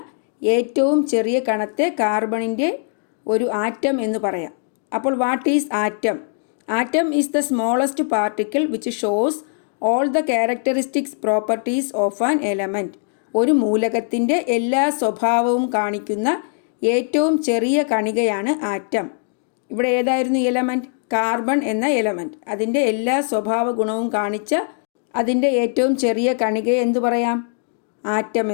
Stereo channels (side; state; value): right; silent; 65 dB below the other